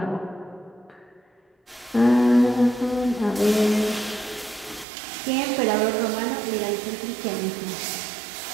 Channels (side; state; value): left; drops out; at 4.9 s